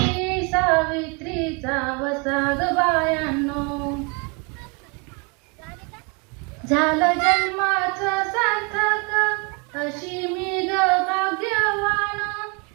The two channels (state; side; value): quieter; left; 31.5 dB